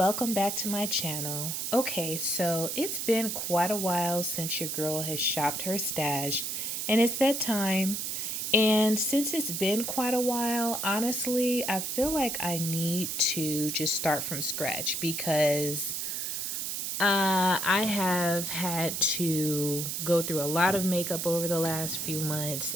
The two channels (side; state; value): right; noise; hiss, 3 dB below the sound